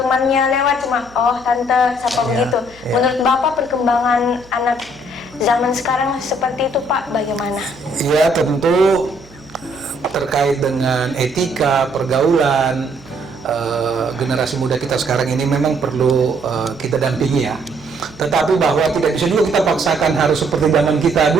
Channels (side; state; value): right; noise; hum, 24 dB below the sound